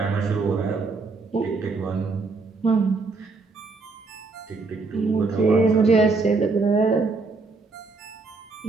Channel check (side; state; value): left; quieter; 4.0 dB